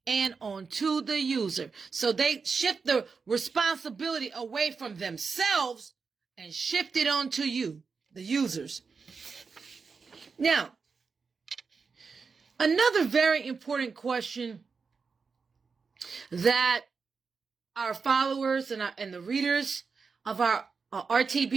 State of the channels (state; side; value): quieter; left; 5.1 dB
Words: and onto the user. So they shift the responsibility away from themselves and shift it onto you, the users. Now, another very important question that our followers and the readers of our